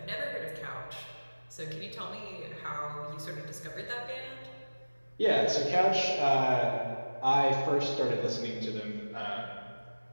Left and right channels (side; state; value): both; inverted; correlation -1.00